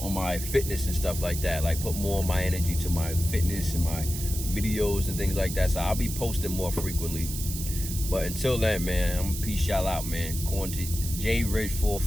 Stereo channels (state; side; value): noise; right; hiss, 7 dB below the sound